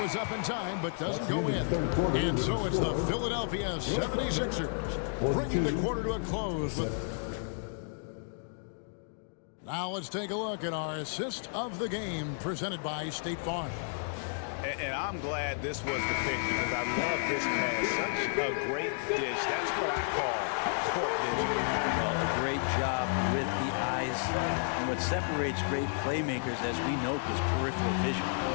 up in time, but doesn't go in. And so it's the Philadelphia 76ers bringing the quarter to a close. Now let's take a look at our assist of the game presented by State Farm. And I'm glad this was the pick because I love this pass. Such a great dish. That's what I call a court vision. Well, a great job with the eyes. And what separates great playmakers, as we note, is peripheral vision.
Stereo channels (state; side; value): silent; right; digital silence